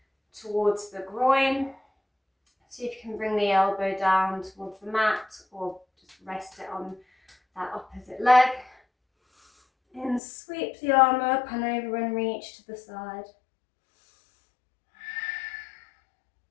towards the groin. See if you can bring the elbow down towards the mat or just rest it on that opposite leg. And sweep the arm up and over and reach to the side.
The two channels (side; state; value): right; drops out; at 10.2 s